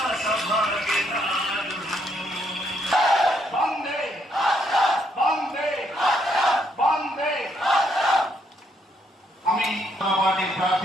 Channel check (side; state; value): both; normal; correlation 0.73